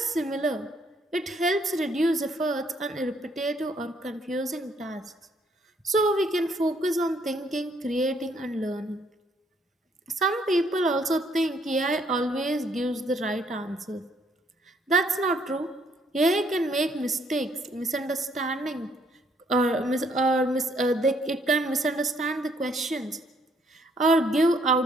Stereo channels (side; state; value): both; normal; correlation 0.68